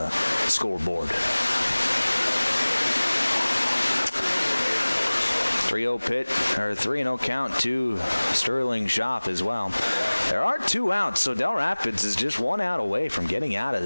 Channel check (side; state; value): both; inverted; correlation -1.00